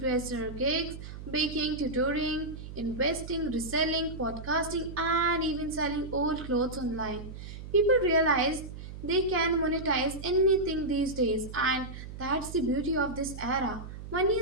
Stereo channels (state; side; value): noise; right; hum, 11 dB below the sound